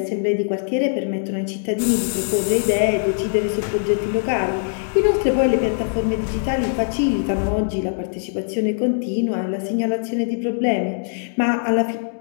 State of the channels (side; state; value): right; silent; digital silence